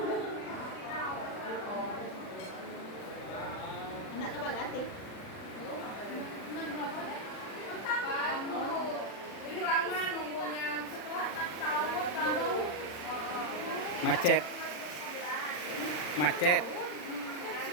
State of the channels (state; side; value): late; right; 40 ms